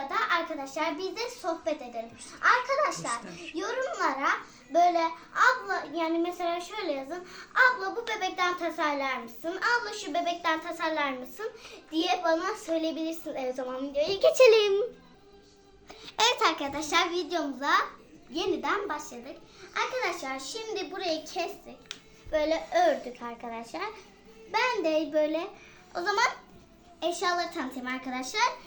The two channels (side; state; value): both; identical; correlation 1.00